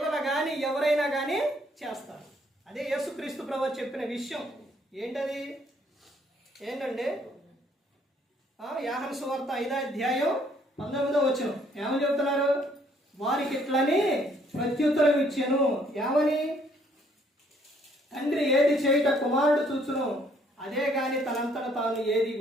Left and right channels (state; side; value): normal; both; correlation 0.65